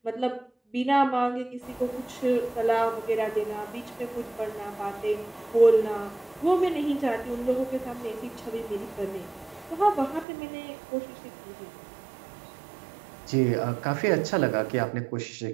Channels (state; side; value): drops out; left; at 10.2 s